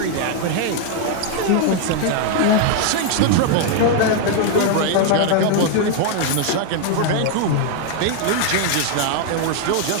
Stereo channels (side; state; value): both; different; correlation 0.00